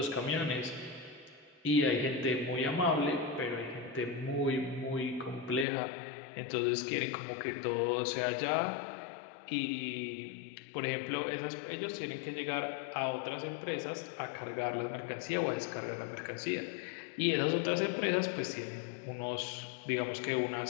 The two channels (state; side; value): drops out; right; at 5.7 s